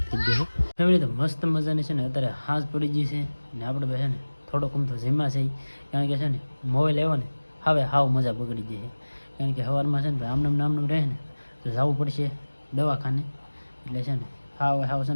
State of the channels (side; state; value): both; inverted; correlation -1.00